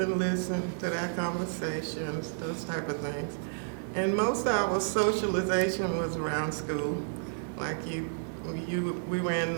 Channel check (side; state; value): left; silent; digital silence